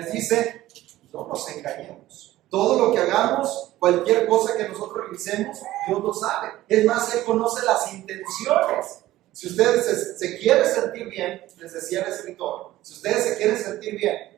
dice, no nos engañemos. Todo lo que hagamos, cualquier cosa que nosotros realicemos, Dios lo sabe. Es más, Él conoce las intenciones. Si ustedes se quieren sentir bien, les decía el escritor, si ustedes se quieren sentir bien,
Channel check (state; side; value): quieter; left; 15.6 dB